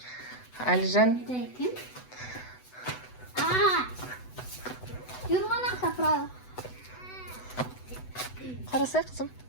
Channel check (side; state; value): right; late; 8.0 ms